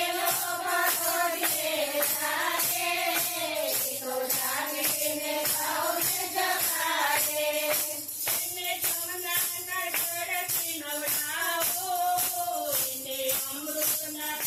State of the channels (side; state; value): both; identical; correlation 1.00